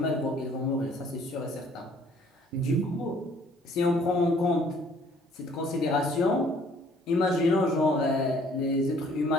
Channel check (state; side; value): normal; both; correlation 0.59